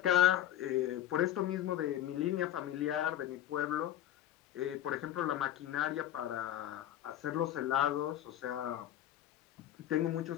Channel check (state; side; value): quieter; right; 12.2 dB